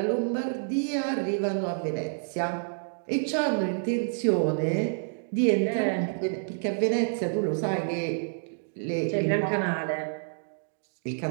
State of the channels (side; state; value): left; silent; digital silence